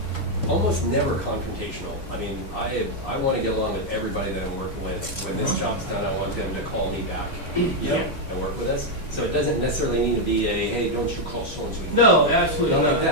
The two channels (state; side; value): late; right; 3.6 ms